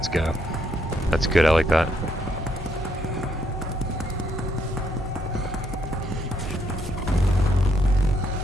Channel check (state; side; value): normal; both; correlation 0.73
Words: go. That's good, I like that.